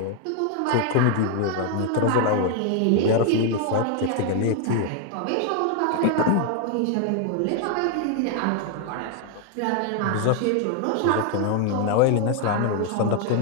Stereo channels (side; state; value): both; different; correlation 0.00